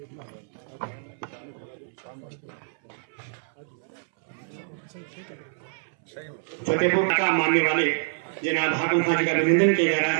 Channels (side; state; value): left; silent; 61 dB below the other